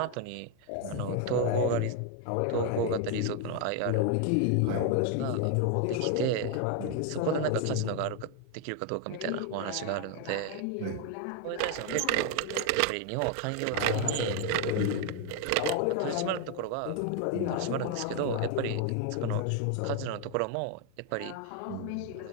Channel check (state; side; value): different; both; correlation 0.01